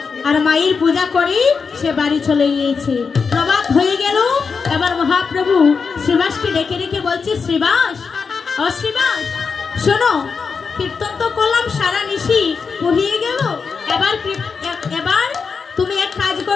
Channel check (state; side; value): quieter; right; 5.3 dB